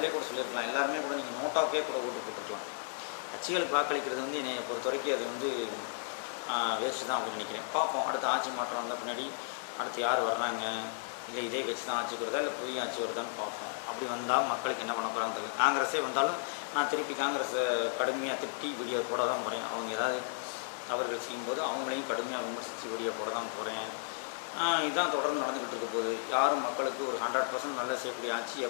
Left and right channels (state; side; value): silent; right; digital silence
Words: கூட சொல்லியிருக்கலாம், எல்லாருமே கூட நீங்கள் நோட்டாக்கே கூட ஓட்டு போட்டுருக்கலாம். கட்சிகளுக்கு வாக்களிக்கிறது வந்து என்னை பொறுத்த வரைக்கும் அது வந்து வேஸ்ட்டு தான் அப்படின்னு நினைக்கிறேன். பார்ப்போம், அடுத்த ஆட்சி மாற்றம் வந்த பின்னாடி அடுத்து யார் வர்றாங்க, இல்லை இதே கட்சி தான் ஆட்சிக்கு வருதா இல்லை புதிய ஆட்சி வருதான்னு பார்ப்போம். அப்படி வந்தால் மக்களுக்கு என்ன பண்ண போகிறாங்க தெரியல. காங்கிரஸே வந்தாலும் நான் திருப்பி காங்கிரஸை கடுமையாக திட்டி வீடியோ போட தான் போகிறேன். அவங்க ஏதாவது தவறுகள் செய்யும்போது அவங்களையும் கடுமையாக விமர்சித்து வீடியோ போட தான் போகிறேன். இதுதான் தொடர்ந்து நடந்துக்கிட்டு இருக்க போகுது. யாரும் மக்களுக்கு ஒரு 100% நல்ல செய்யக்கூடிய ஆட்சி